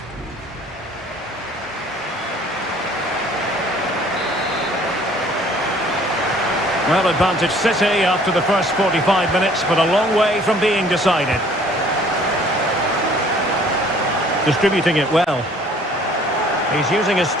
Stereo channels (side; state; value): both; normal; correlation 0.55